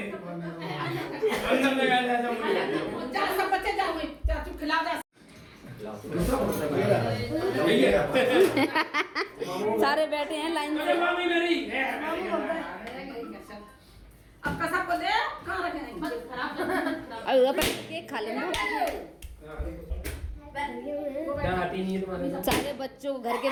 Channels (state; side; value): identical; both; correlation 1.00